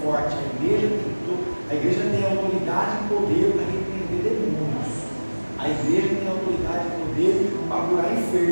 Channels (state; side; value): inverted; both; correlation -1.00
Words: forte, a igreja tem autoridade e poder para repreender demônios, a igreja tem autoridade e poder para curar